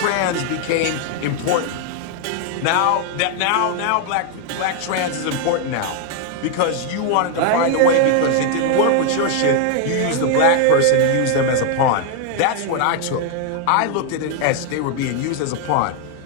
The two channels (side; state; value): both; different; correlation 0.00